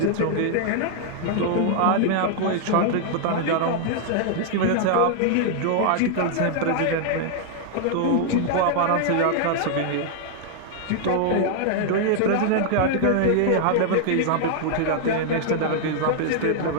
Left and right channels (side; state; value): both; different; correlation 0.00